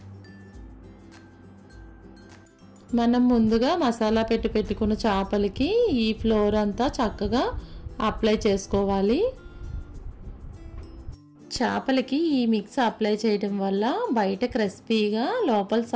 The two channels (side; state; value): both; identical; correlation 1.00